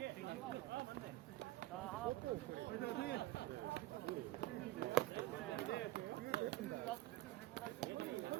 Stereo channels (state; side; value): quieter; left; 16.6 dB